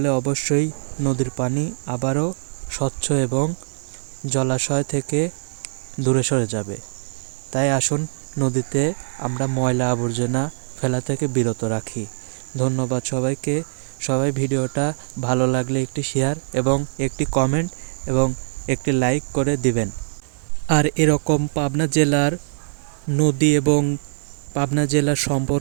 অবশ্যই নদীর পানি আবারও স্বচ্ছ এবং জলাশয় থেকে দূরে সরে যাবে। তাই আসুন নদীতে আমরা ময়লা আবর্জনা ফেলা থেকে বিরত রাখি। ধন্যবাদ সবাইকে। সবাই ভিডিওটা ভালো লাগলে একটি শেয়ার এবং একটি কমেন্ট এবং একটি লাইক করে দিবেন। আর এরকম পাবনা জেলার নদী এবং পাবনা জেলার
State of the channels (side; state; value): left; silent; digital silence